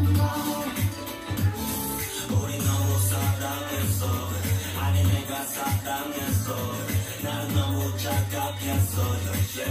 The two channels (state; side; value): identical; both; correlation 1.00